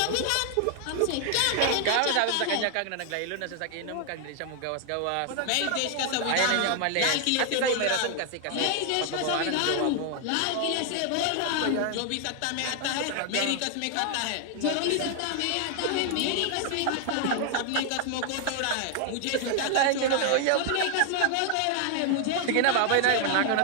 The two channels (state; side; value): different; both; correlation 0.00